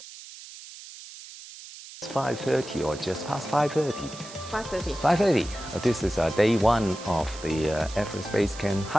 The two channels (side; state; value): right; noise; hiss, 15 dB below the sound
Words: It's 5:30 or just past 5:30? 5:30. 5:30. This is day one of the Everest Base Camp